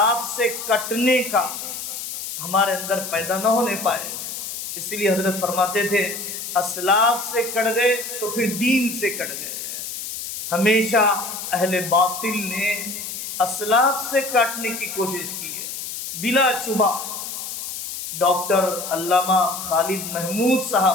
سے کٹنے کا ہمارے اندر پیدا نہ ہونے پائے۔ اس لیے حضرت فرماتے تھے اسلاف سے کٹ گئے تو پھر دین سے کٹ گئے۔ ہمیشہ اہل باطل نے اسلاف سے کاٹنے کی کوشش کی ہے۔ بلا شبہ ڈاکٹر علامہ خالد محمود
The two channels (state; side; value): noise; left; hiss, 7 dB below the sound